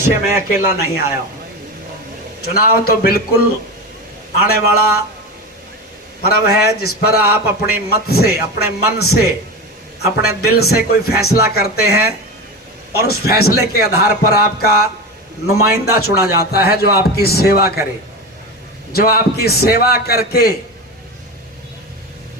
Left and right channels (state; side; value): normal; both; correlation 0.23